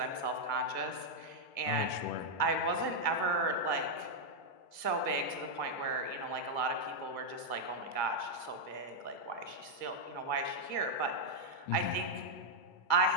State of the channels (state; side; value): late; right; 1.8 ms